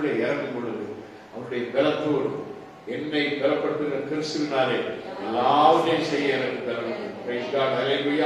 இறங்கும் பொழுது அவருடைய பலத்தோடு என்னை பலப்படுத்துகிற கிறிஸ்துவினாலே எல்லாவற்றையும் செய்ய எனக்கு பலன்.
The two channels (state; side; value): identical; both; correlation 1.00